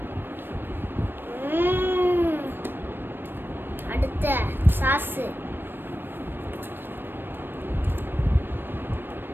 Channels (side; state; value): left; late; 0.097 ms